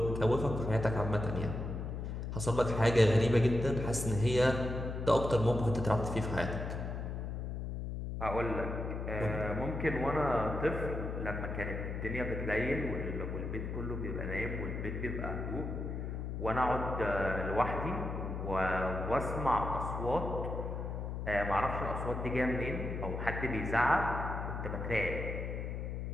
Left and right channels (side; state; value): left; noise; hum, 4 dB below the sound